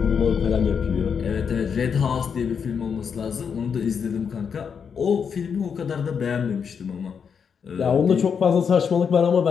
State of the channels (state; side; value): quieter; right; 6.7 dB